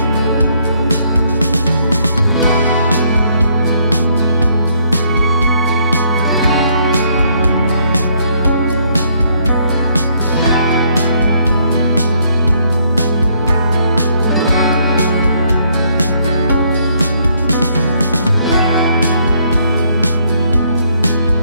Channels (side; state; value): both; inverted; correlation -0.69